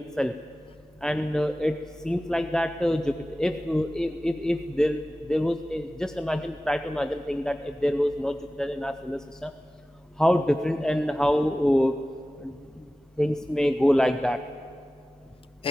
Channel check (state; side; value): normal; both; correlation 0.96